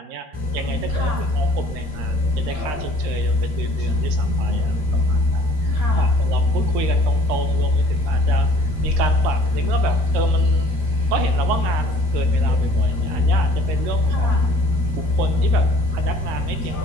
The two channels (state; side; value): late; left; 12 ms